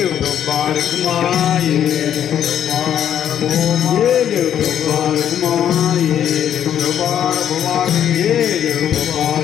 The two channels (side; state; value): right; quieter; 9.9 dB